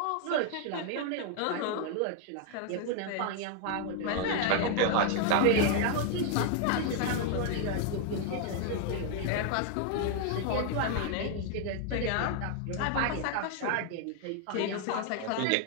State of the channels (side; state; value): both; different; correlation 0.00